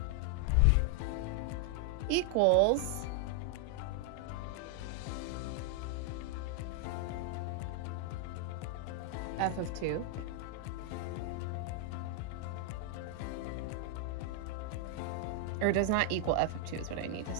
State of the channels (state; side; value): different; both; correlation 0.00